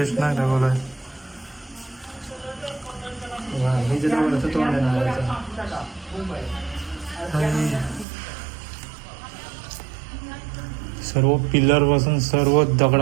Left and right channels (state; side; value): drops out; left; at 8.1 s